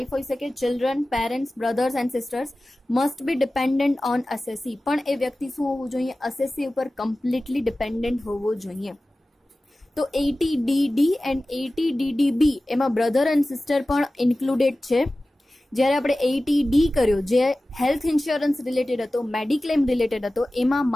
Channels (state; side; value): normal; both; correlation 0.96